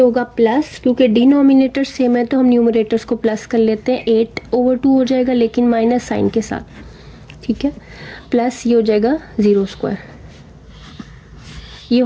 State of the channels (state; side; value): identical; both; correlation 1.00